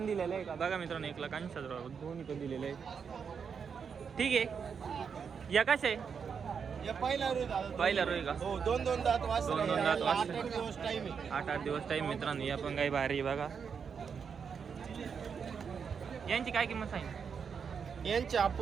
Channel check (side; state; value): left; quieter; 6.5 dB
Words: दिलेले आहे का. बघा मित्रांनो 1,80,000 दोन्ही पण दिलेले आहे. ठीक आहे या कसे आहे. या पहिला रोज दादा. पहिला रोज का. हो 2-2 दात वासरे. 2-2 दात वासरे. 8-8 दिवस टाइम आहे. 8-8 दिवस टाईम मित्रांनो. या पण गाई भारी आहे. बघा यांची काय किंमत सांगितली. यांचे